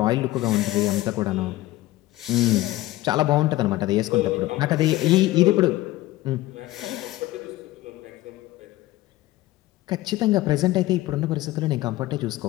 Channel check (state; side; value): quieter; right; 17.0 dB